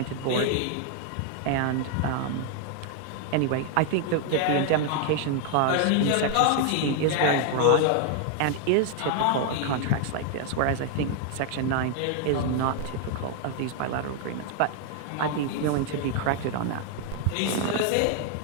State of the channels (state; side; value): different; both; correlation 0.00